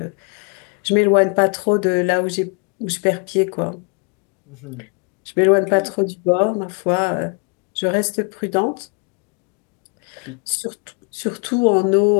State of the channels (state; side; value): quieter; right; 36.7 dB